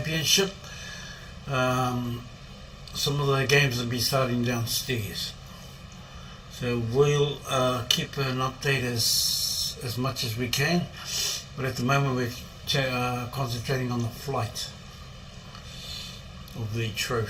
Some of the games will be starting downstairs. So we'll keep an update as much as we can. But at the moment, we're concentrating on the flight of the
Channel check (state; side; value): identical; both; correlation 1.00